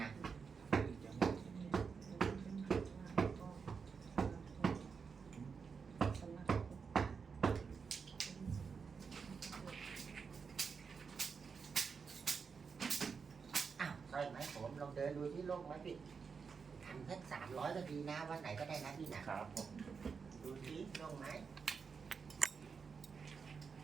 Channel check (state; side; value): quieter; left; 5.6 dB